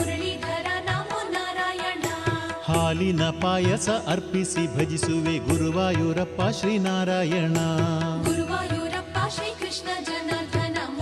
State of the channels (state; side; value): identical; both; correlation 1.00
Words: ನಮೋ ನಾರಾಯಣ. ಹಾಲಿನ ಪಾಯಸ ಅರ್ಪಿಸಿ ಭಜಿಸುವೆ ಗುರುವಾಯೂರಪ್ಪ ಶ್ರೀನಾರಾಯಣ. ಗುರುವಾಯೂರಪ್ಪ ಶ್ರೀಕೃಷ್ಣ ಜನಾರ್ದನ